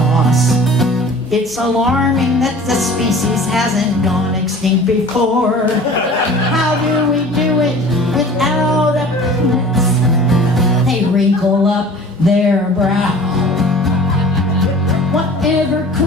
it's alarming that the species hasn't gone extinct before. How do we do it without a penis? They wrinkle up their brow. Whatever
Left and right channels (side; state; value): both; normal; correlation 0.44